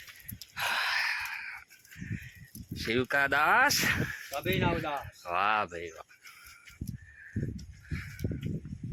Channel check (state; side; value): identical; both; correlation 1.00